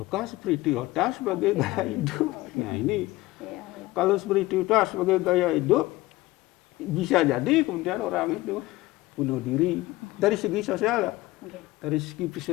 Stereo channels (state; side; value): quieter; right; 18.9 dB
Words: spiritualitas sebagai gaya hidup? Nah ini, kalau spiritualitas sebagai gaya hidup, bisa jadi kemudian orang itu bunuh diri. Dari segi sosial ya, dari segi